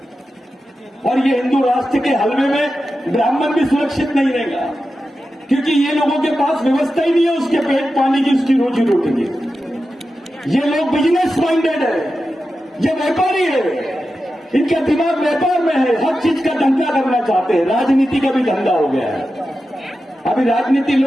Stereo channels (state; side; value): normal; both; correlation 0.91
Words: और ये हिंदू राष्ट्र के हलवे में ब्राह्मण भी सुरक्षित नहीं रहेगा, क्योंकि ये लोगों के पास व्यवस्था ही नहीं है उसके पेट पानी की, उसकी रोजी रोटी की। ये लोग बिजनेस माइंडेड है, ये व्यापारी है, इनका दिमाग व्यापार में है, हर चीज का धंधा करना चाहते हैं। राजनीति का भी धंधा हो गया है। अभी राजनीति